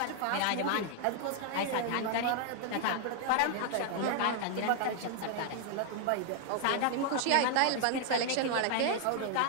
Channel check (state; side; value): different; both; correlation 0.00